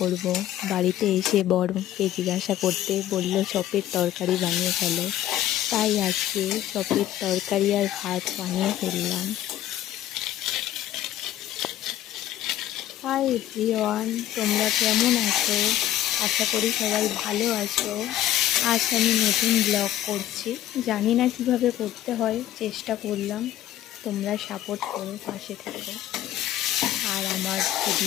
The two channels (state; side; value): quieter; right; 12.7 dB